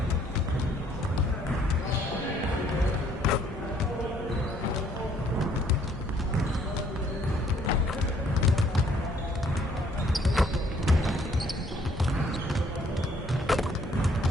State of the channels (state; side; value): normal; both; correlation 0.63